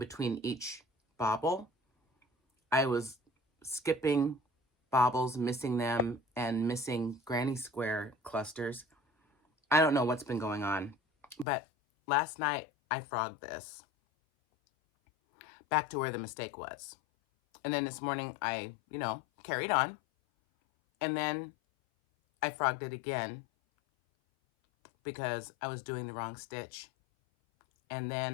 each bauble, I was skipping baubles, missing them, and missing granny square clusters. I don't know what's been going on, but last night I frogged this back to where the mistake was. And then this morning I, you know, carried on, and then I frogged it again because I was doing the wrong stitch. And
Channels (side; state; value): right; drops out; at 11.5 s